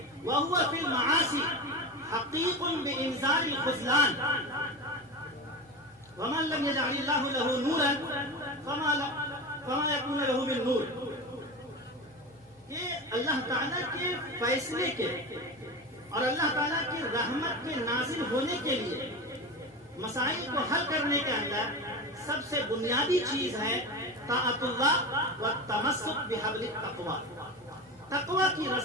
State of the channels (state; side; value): normal; both; correlation 0.25